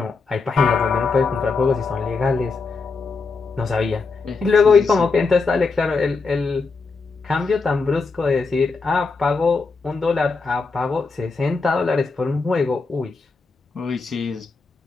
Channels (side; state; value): right; quieter; 4.3 dB